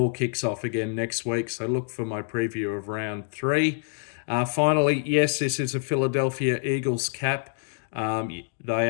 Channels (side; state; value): right; silent; 61 dB below the other